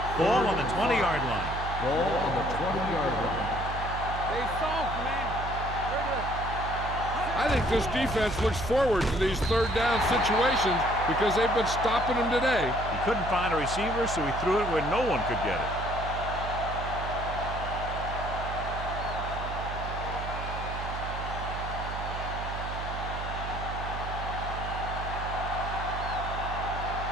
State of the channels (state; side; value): noise; right; hum, 6 dB below the sound